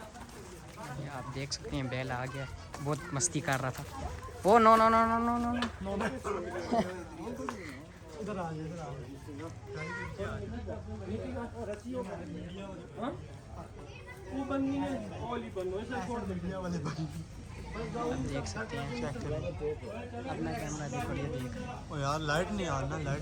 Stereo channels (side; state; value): both; identical; correlation 1.00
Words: आप देख सकते हैं बैल आ गया, बहुत मस्ती कर रहा था। Oh no no no no no no no. इधर आ इधर आ। वो बननी है, ओली बनो, ऐसे छोड़ दे। वाले भाई आप देख सकते हैं चेक करें अपना कैमरा देखो। ये देख ओ यार लाइट नहीं आ रहा, लाइट